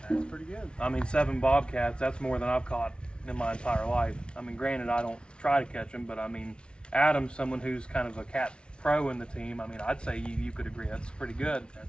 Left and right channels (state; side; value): late; right; 0.057 ms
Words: That's pretty good. I mean, 7 bobcats. That's more than I've caught in my entire life. I mean, granted, I don't try to catch them, but I mean, Adam's someone who's kind of a cat pro in the team. I mean, I'd say you could agree that's pretty good.